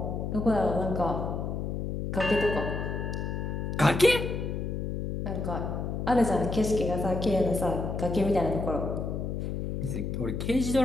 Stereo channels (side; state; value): left; noise; hum, 3 dB below the sound